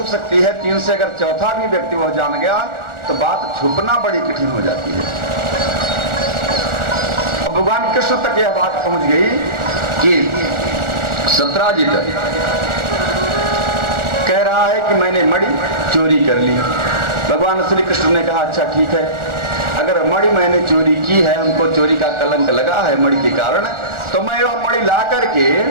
सकती है, 3 से अगर चौथा भी व्यक्ति वो जान गया तो बात छुपना बड़ी कठिन हो जाती है। अब भगवान कृष्ण तक यह बात पहुंच गई कि सत्राजित कह रहा है कि मैंने मणि चोरी कर ली। भगवान श्री कृष्ण ने कहा अच्छा ठीक है, अगर मणि मैंने चोरी की है, हमको चोरी का कलंक लगा है मणि के कारण, तो मैं वह मणि ला करके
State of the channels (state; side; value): late; left; 1.4 ms